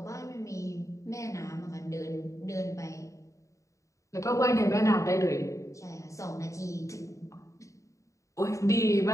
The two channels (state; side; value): late; right; 0.15 ms